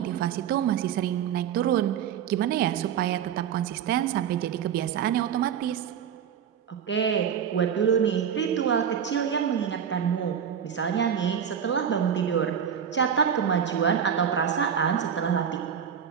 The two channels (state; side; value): quieter; left; 8.3 dB